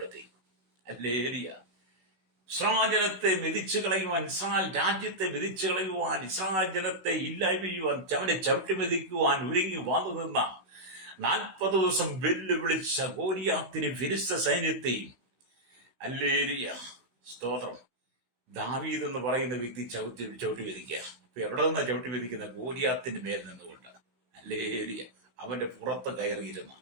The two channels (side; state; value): left; late; 16 ms